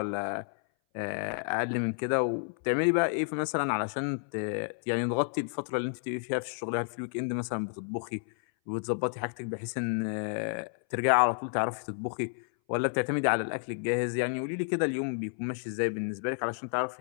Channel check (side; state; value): right; silent; 57 dB below the other